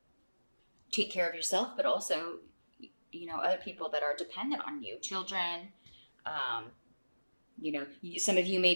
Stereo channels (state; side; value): inverted; both; correlation -1.00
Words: take care of yourself, but also, you know, other people that are dependent on you, children. You know, some of you may